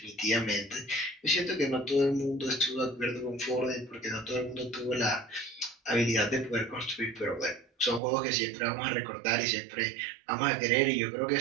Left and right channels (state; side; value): drops out; left; at 8.0 s